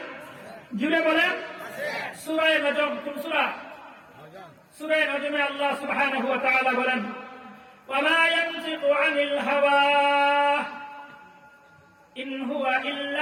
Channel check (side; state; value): both; identical; correlation 1.00